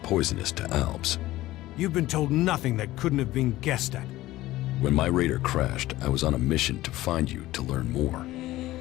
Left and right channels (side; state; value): right; quieter; 16.6 dB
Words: poisonous to Albs. You've been told nothing that couldn't have been guessed at. When my raider crashed, I was on a mission to find you to learn more.